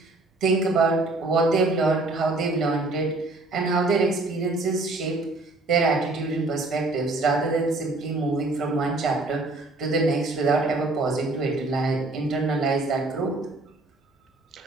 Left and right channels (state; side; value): quieter; left; 3.1 dB